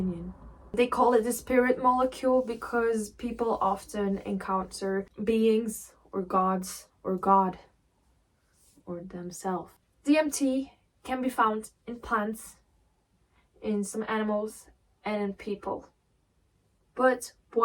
They call it the spirit molecule because people often encounter beings or gods or God or themselves. DMT can be found in plants, in some animals, and in people. But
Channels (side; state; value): both; identical; correlation 1.00